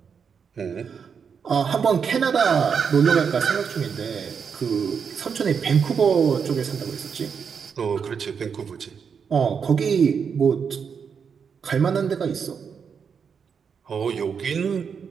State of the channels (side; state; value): left; quieter; 6.5 dB